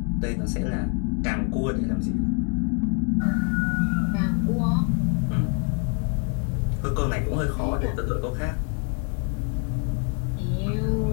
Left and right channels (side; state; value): right; quieter; 37.5 dB